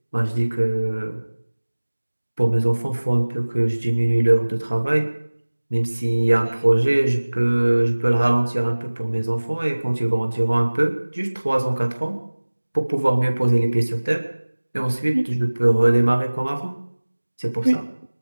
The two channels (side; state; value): both; inverted; correlation -1.00